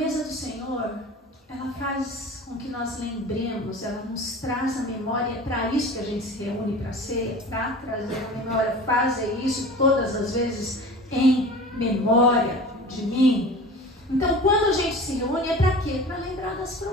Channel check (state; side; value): normal; both; correlation 0.38